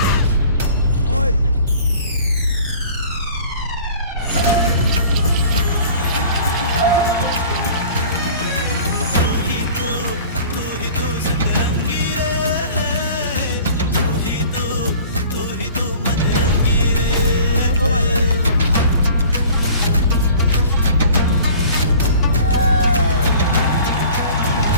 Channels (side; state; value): both; inverted; correlation -0.46